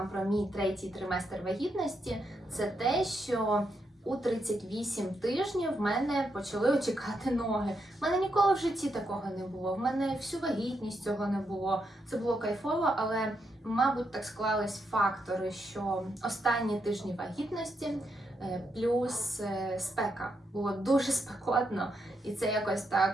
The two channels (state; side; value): normal; both; correlation 0.81